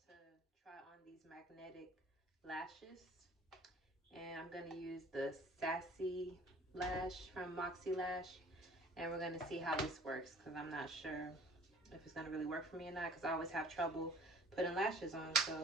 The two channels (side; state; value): both; normal; correlation 0.50